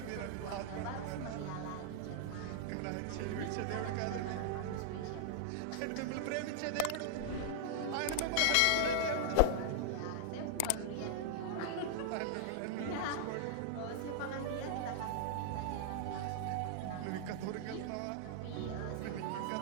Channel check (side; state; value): both; different; correlation -0.01